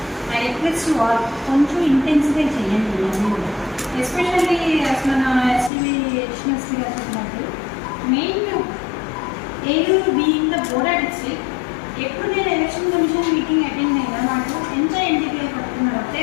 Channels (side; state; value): right; drops out; at 5.7 s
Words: ఐ రిక్వెస్ట్ కొంచెం ఇంటెన్సిఫై చేయండి. ఎస్పెషల్లీ అసలు నా ఎస్టీవీ ఎడిషనల్స్కి చెప్పినట్టు main Eluru being the border district ఎప్పుడు నేను ఎలక్షన్ కమిషన్ మీటింగ్ అటెండ్ అయినా నాకు ఎంత ఎన్టీపీఐ పడుతున్నారు ఒకే